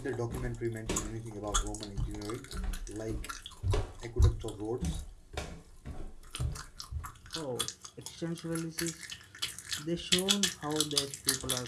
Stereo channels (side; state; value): both; identical; correlation 1.00